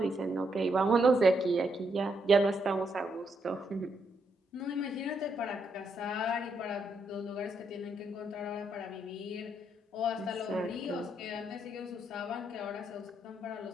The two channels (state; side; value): normal; both; correlation 0.77